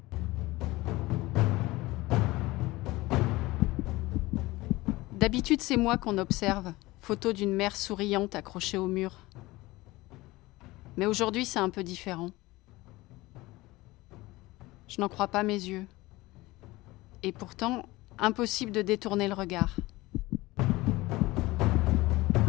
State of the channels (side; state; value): right; quieter; 20.0 dB